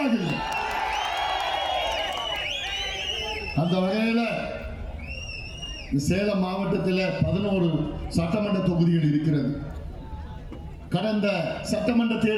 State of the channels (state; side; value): identical; both; correlation 1.00